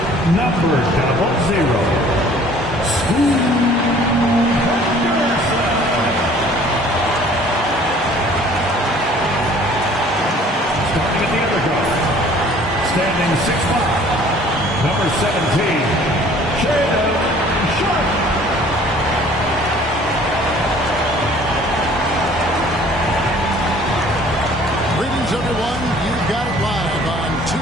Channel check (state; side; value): normal; both; correlation 0.53